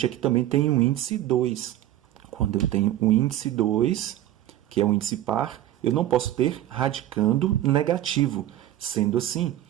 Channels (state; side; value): quieter; left; 13.4 dB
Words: aqui também tem um índice 2. Quando eu tenho um índice 2, que é um índice par, eu não posso ter radicando negativo. Sendo assim,